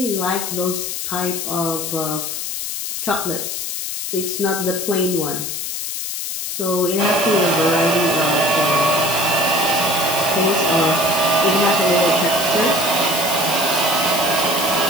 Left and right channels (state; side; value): noise; left; hiss, 4 dB below the sound